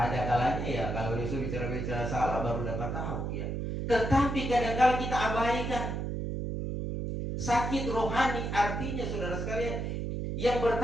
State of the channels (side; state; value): right; noise; hum, 3 dB below the sound